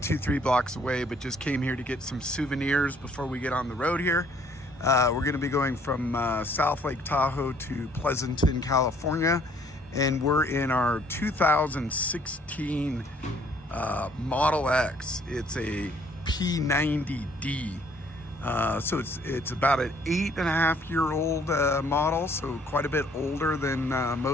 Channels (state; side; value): normal; both; correlation 0.62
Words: 2-3 blocks away, but just came here to get some souvenirs before we get on the road here. We're going to be going from South Lake Tahoe to Pleasanton, California, and we're in our 2016 Model X. It's a P90D. So it's about an 8.5-year-old model, so quite a bit older than